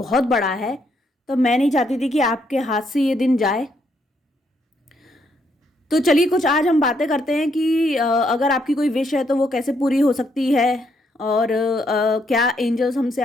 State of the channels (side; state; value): both; normal; correlation 0.74